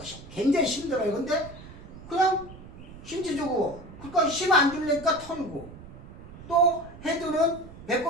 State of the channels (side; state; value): right; noise; rumble, 16 dB below the sound